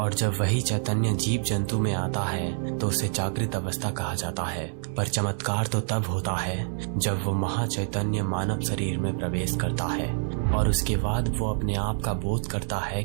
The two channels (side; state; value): left; silent; digital silence